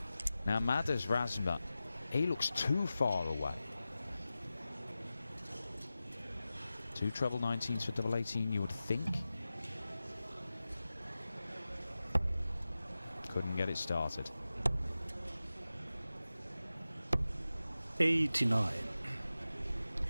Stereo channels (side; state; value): both; inverted; correlation -0.95